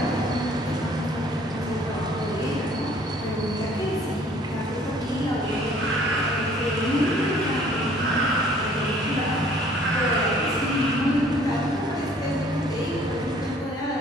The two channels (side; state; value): both; normal; correlation 0.56